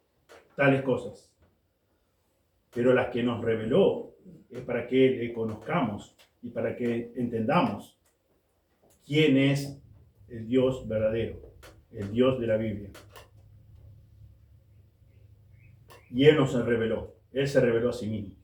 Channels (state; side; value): identical; both; correlation 1.00